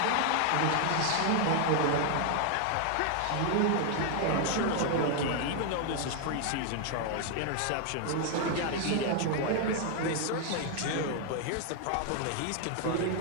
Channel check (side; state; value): both; different; correlation 0.00